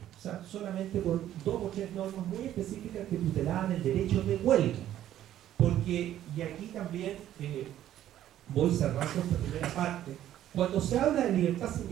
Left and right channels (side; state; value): left; quieter; 12.1 dB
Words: O sea, solamente con 2 o 3 normas muy específicas que tutelaban el derecho de huelga. Porque, y aquí también voy cerrando esta primera parte, cuando se habla de libertad